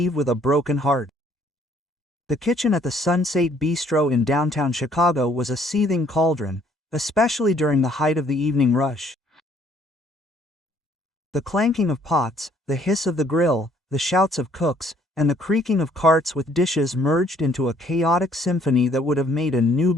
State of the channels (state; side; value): normal; both; correlation 0.63